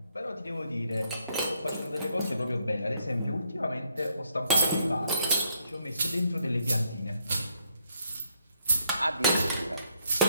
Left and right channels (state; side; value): inverted; both; correlation -0.72